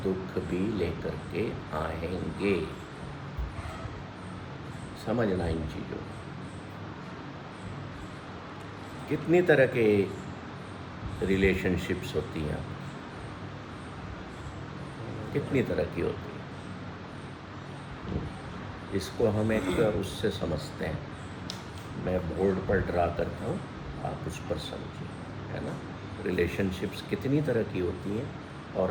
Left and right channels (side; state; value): both; identical; correlation 1.00